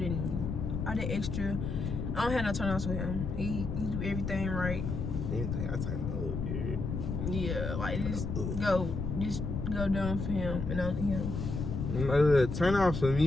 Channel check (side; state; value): left; noise; rumble, 3 dB below the sound